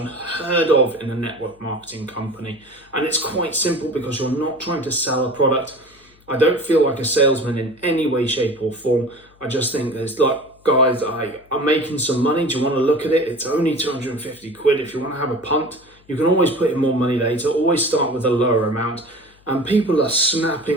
of in a network marketing company. And it's quite simple, because you're not trying to sell a product. I don't feel like a salesman in any way, shape or form. I just think there's like, guys, I'm making some money. Do you want to look at it? It's only 250 quid. If you want to have a punt, you can always put in more money later. Always start with a lower amount. And people are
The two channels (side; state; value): left; noise; hum, 30 dB below the sound